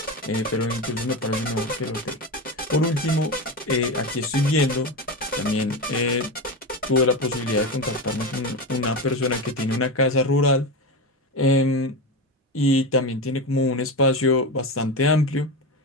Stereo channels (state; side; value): normal; both; correlation 0.19